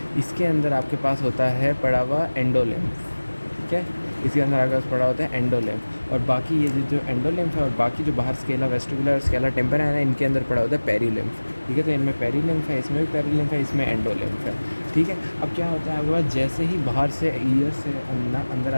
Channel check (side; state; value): both; inverted; correlation -1.00